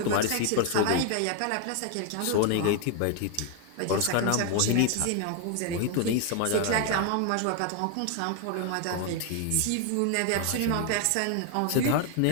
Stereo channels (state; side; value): different; both; correlation 0.01